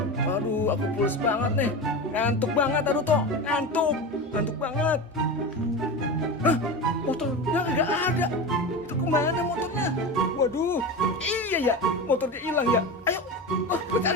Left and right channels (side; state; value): both; normal; correlation 0.25